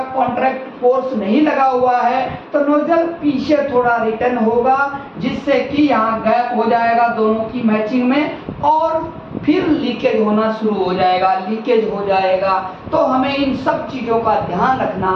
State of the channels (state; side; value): identical; both; correlation 1.00